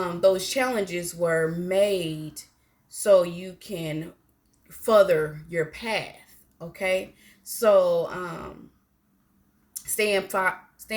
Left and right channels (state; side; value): identical; both; correlation 1.00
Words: challenges were made so you can further your path. Okay, so staying